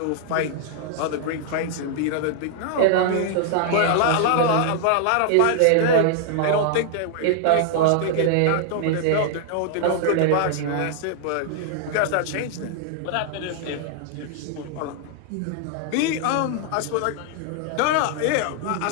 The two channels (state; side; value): different; both; correlation -0.01